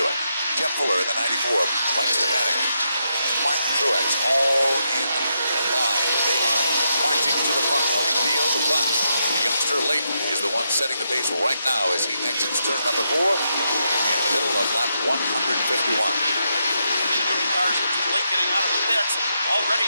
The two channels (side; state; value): both; inverted; correlation -0.82